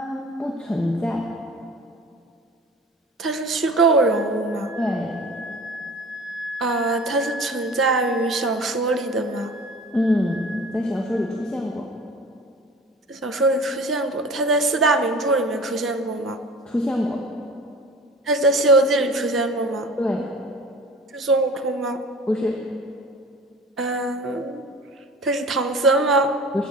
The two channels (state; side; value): normal; both; correlation 0.41